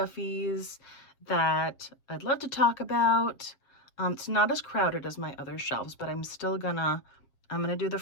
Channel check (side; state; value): right; late; 7.5 ms